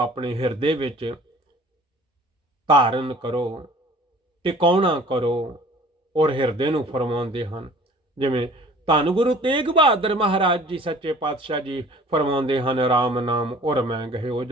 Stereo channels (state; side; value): normal; both; correlation 0.49